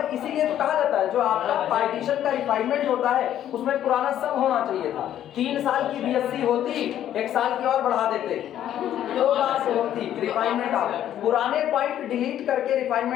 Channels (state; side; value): quieter; right; 11.2 dB